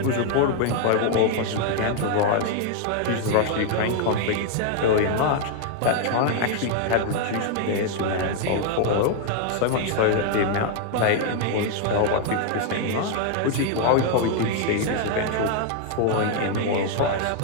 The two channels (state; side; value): different; both; correlation 0.00